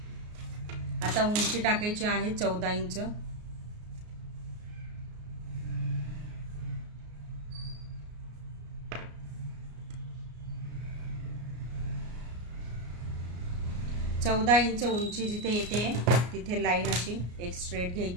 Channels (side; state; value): left; late; 33 ms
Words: आता उंची टाकायची आहे 14 इंच. चौदा इंच उंची जिथे येते तिथे लाईन अशी एक स्ट्रेट